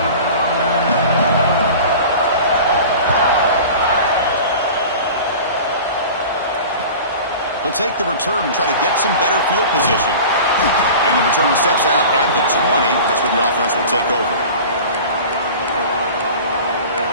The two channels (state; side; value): inverted; both; correlation -0.38